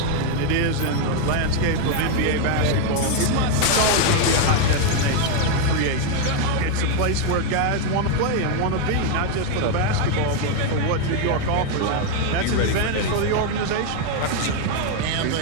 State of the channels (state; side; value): different; both; correlation 0.01